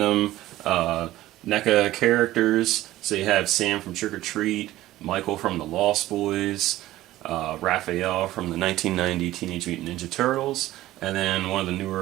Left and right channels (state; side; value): quieter; left; 15.7 dB